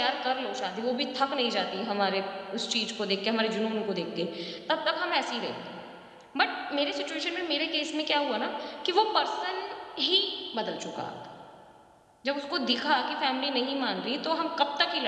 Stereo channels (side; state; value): both; identical; correlation 1.00